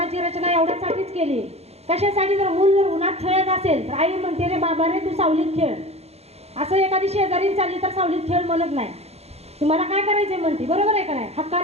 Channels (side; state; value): left; late; 0.30 ms